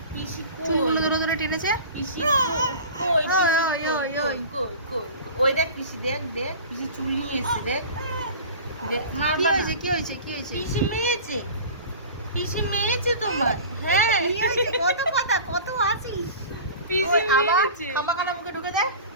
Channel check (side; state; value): both; inverted; correlation -0.38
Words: পিসি চুলগুলো ধরে ধরে টেনেছে। পিসি ওই ওই ওই ওই ওই দেখ পিসি দেখ দেখ পিসি চুল নিয়ে এসে দেখ দেখ কি হয়েছে কি হয়েছে কি হয়েছে? পিসি মেয়েছে তোমার। হ্যাঁ কি হয়েছে? কত কথা কত আছিস? পিসি আবার মেরেছে খামাখানা মুখে ঢুকে যায়।